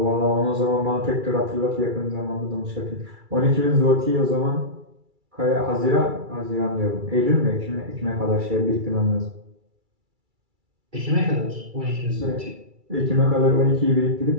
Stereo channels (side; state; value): left; late; 2.3 ms